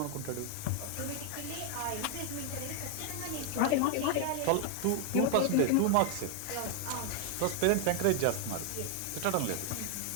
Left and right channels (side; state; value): both; different; correlation 0.00